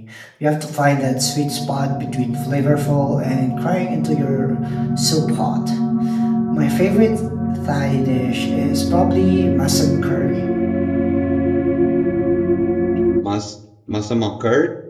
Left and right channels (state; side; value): identical; both; correlation 1.00